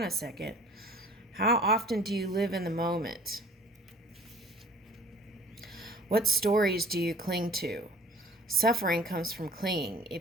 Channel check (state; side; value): normal; both; correlation 0.49